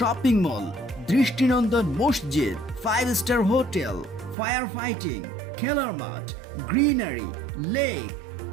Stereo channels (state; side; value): drops out; left; at 4.4 s